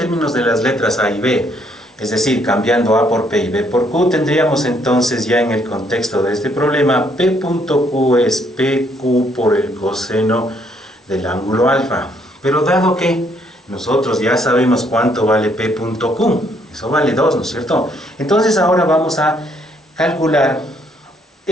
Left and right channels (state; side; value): normal; both; correlation 0.69